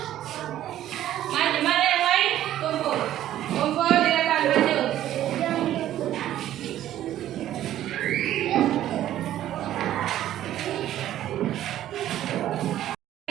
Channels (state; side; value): quieter; left; 12.6 dB